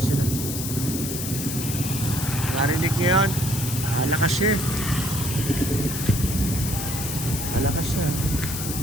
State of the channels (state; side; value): noise; left; hiss, 5 dB below the sound